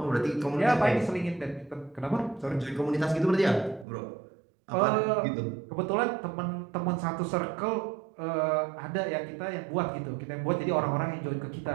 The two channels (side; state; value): left; drops out; at 3.9 s